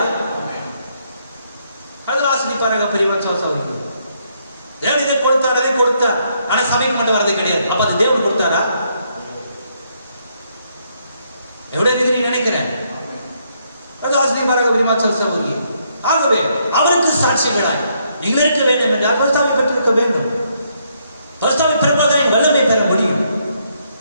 அதில் ஆசிரிப்பாராக பெரியவன் சோசவருக்கு தேவன் இதை கொடுத்தார், அதை கொடுத்தார். ஆனா சபைக்கு மட்டும் வரதே கிடையாது. அப்ப அது தேவன் கொடுத்தாரா? எவ்வளவு இருக்கிறீங்க நினைக்கிறேன். ஆசிரியப்பாராக பெரியவன் சோசவருக்கு. ஆகவே அவருக்கு சாட்சிகளாய் நீங்கள் இருக்க வேண்டும் என்றால் பரிசுத்தாவை பெற்றிருக்க வேண்டும். பரிசுத்தாவை பெறுவதை வல்லமை பெற முடியும்.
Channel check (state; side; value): inverted; both; correlation -0.73